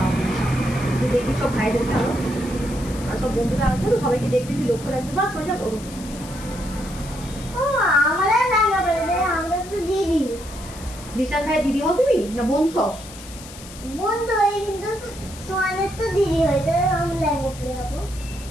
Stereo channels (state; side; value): noise; left; hiss, 16 dB below the sound